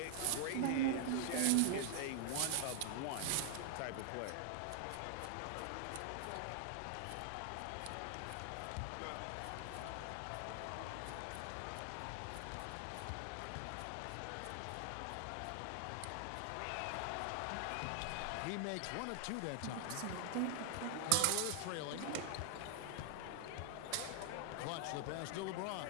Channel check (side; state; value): both; different; correlation 0.00